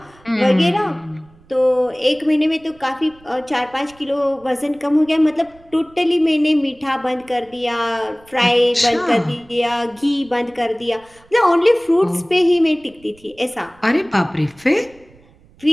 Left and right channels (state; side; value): noise; right; rumble, 28 dB below the sound